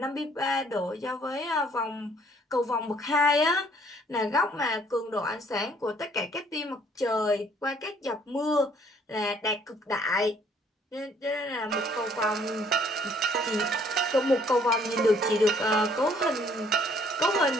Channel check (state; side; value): normal; both; correlation 0.61